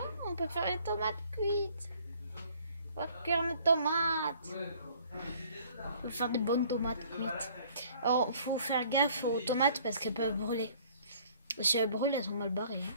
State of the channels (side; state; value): both; inverted; correlation -0.56